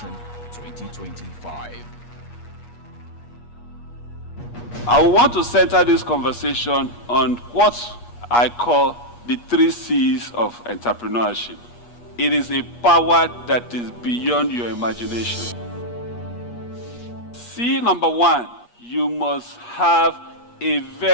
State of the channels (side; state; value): right; late; 8.4 ms